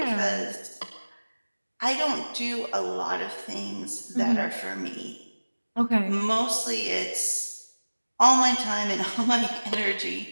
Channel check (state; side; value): inverted; both; correlation -1.00